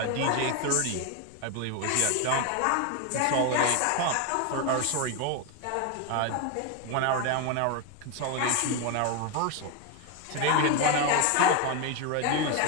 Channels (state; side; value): different; both; correlation 0.02